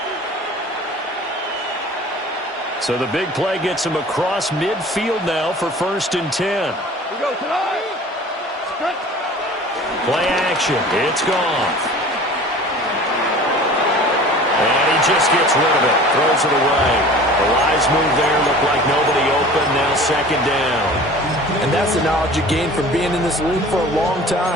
So the big play gets him across midfield now for 1st and 10. We go tonight. Play action. It's gone. And he just gets rid of it. Throws it away. The wise move there. Looked like nobody open. Now 2nd down. And that's the knowledge you gain from being in this league for a long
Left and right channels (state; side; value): normal; both; correlation 0.43